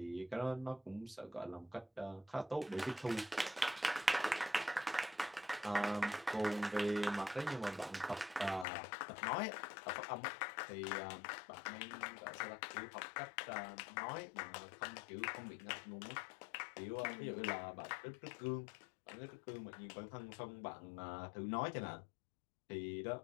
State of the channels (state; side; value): drops out; right; at 8.7 s